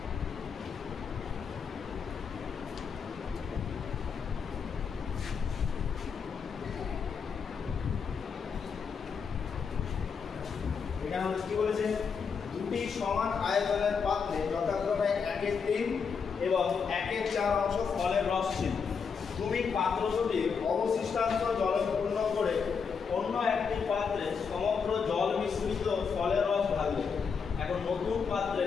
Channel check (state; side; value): quieter; right; 6.0 dB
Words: এখানে কি বলেছে, দুটি সমান আয়তনের পাত্রে যথাক্রমে 1/3 এবং 1/4 অংশ ফলের রস ছিল। তুমি পাত্র দুটি অবশিষ্টাংশ জলে পূর্ণ করে অন্য একটি পাত্রে সমগ্র জল মিশ্রিত ফলের রস ঢালবে। এখন নতুন পাত্রে